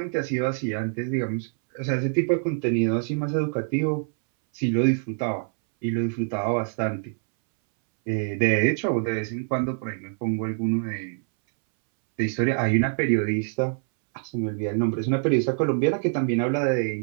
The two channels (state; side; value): silent; left; 62 dB below the other